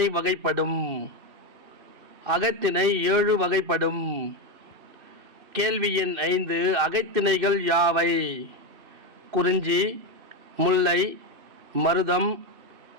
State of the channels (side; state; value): left; late; 2.6 ms